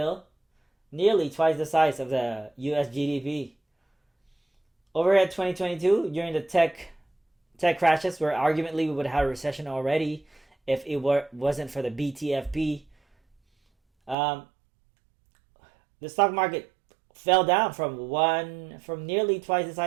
nearly twice the size of the US GDP. Over at 2022, during the tech crashes, where arguably we would have a recession already if it wasn't for the BTFP, the stock market fell down from nearly twice the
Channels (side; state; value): left; drops out; at 14.2 s